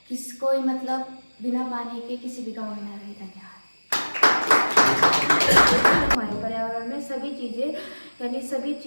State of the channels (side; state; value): both; inverted; correlation -1.00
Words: कोई मतलब बिना पानी के किसी भी गांव में न रहे। धन्यवाद। हमारे पर्यावरण में सभी